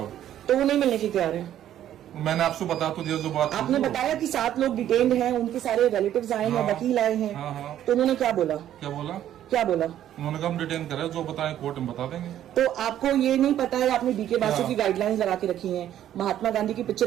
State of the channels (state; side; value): quieter; left; 11.5 dB